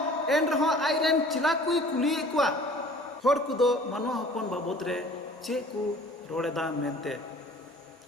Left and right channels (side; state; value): both; normal; correlation 0.49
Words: एन रहो आइरेन चिला कुई कुली कुआ होड़ को दो मानवा हपन बाबत रे चे को रोड़ेदा मेनते